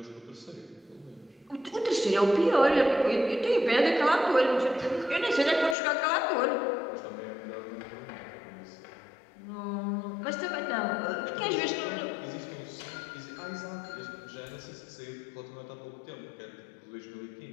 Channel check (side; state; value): right; drops out; at 5.8 s